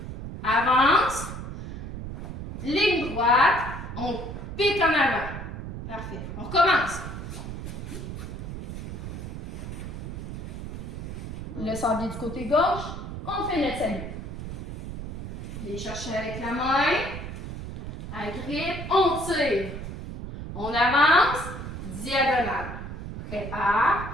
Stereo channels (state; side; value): noise; right; rumble, 8 dB below the sound